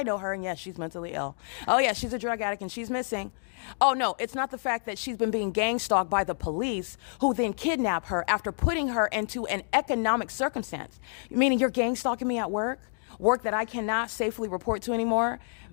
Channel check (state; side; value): silent; right; 59 dB below the other